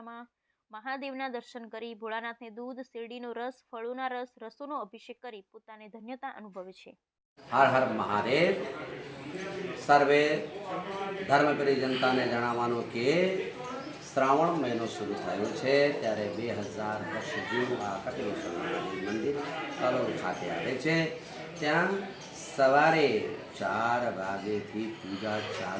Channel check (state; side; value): identical; both; correlation 1.00